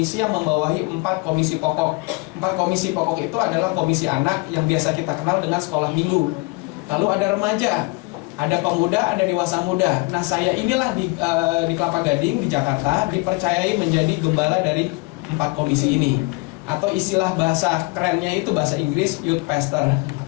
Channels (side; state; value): right; quieter; 26.9 dB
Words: yang membawahi 4 komisi pokok. 4 komisi pokok itu adalah komisi anak yang biasa kita kenal dengan sekolah minggu. Lalu ada remaja, ada pemuda, ada dewasa muda. Nah, saya inilah di Kelapa Gading, di Jakarta, dipercayai menjadi gembala dari 4 komisi ini. Atau istilah bahasa kerennya itu bahasa Inggris, youth pastor.